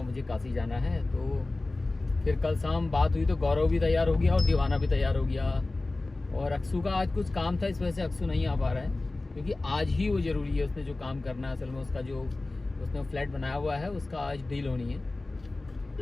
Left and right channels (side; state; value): right; quieter; 3.1 dB